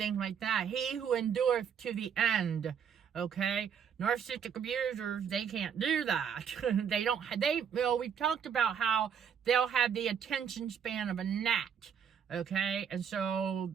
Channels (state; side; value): quieter; left; 7.7 dB